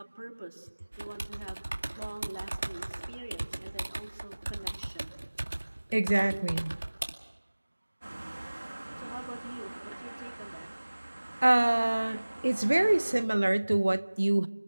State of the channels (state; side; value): inverted; both; correlation -1.00